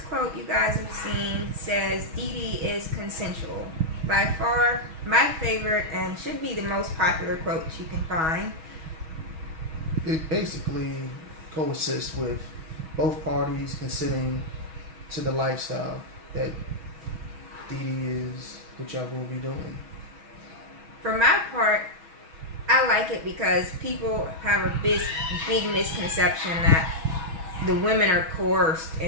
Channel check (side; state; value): left; late; 6.2 ms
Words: quote you guys have seen says, DD is consensual. By far, my favorite and should be the most popular quote you can find. It basically coexists with both parties considering to the lifestyle that DD is, what y'all will be doing. For my part, I like it because people have a big misconception that the women are coerced